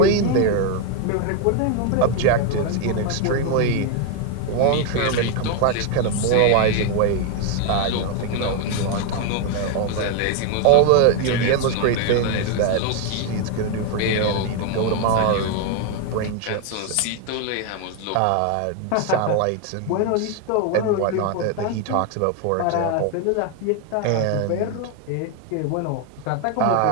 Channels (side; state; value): both; different; correlation 0.01